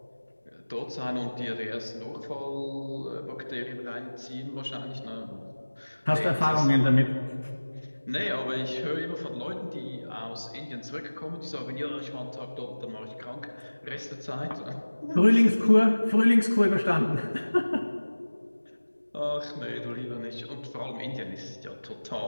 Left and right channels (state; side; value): inverted; both; correlation -1.00